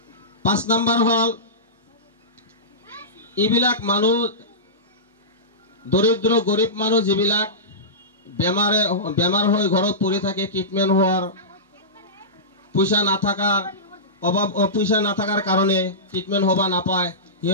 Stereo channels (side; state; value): both; normal; correlation -0.19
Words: 5 নম্বৰ হ'ল এইবিলাক মানুহ দৰিদ্ৰ গৰীব মানুহ যিবিলাক বেমাৰ হৈ ঘৰত পৰি থাকে, ট্ৰিটমেণ্ট হোৱাৰ পইচা নাথাকাৰ কাৰণে ট্ৰিটমেণ্ট হ'ব নাপায়,